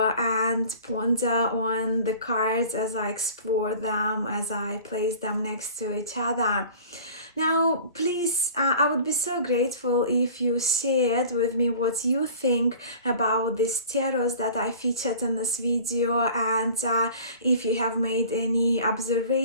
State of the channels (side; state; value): both; inverted; correlation -0.44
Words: and ponder on the cards as I explore them, as I place them next to each other. Now, please, I would be so grateful if you shared with me what you think about these tarots that I featured in this video, and if you have made any